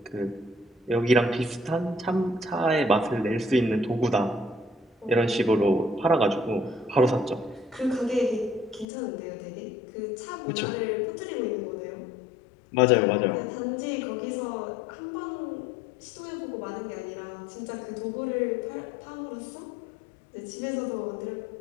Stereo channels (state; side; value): drops out; right; at 8.8 s